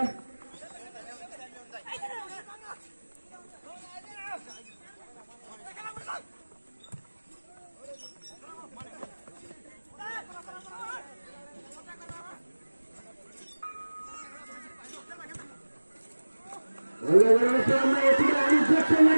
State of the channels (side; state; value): both; inverted; correlation -1.00